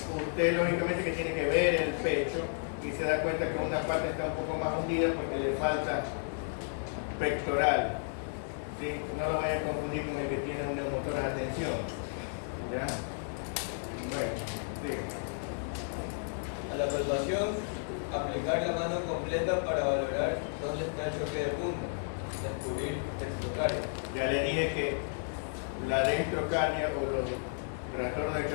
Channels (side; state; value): right; silent; digital silence